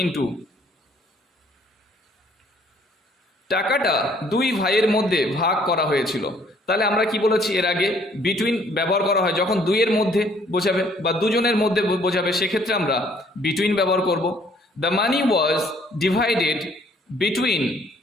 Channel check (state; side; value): normal; both; correlation 0.62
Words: ইনটু। টাকাটা দুই ভাইয়ের মধ্যে ভাগ করা হয়েছিল। তাহলে আমরা কি বলেছি এর আগে, বিটুইন ব্যবহার করা হয় যখন দুইয়ের মধ্যে বোঝাবে বা দুজনের মধ্যে বোঝাবে, সেক্ষেত্রে আমরা বিটুইন ব্যবহার করব। The money was divided between